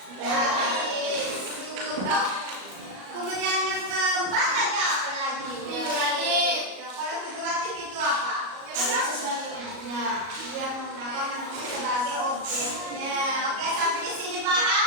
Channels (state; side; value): late; left; 38 ms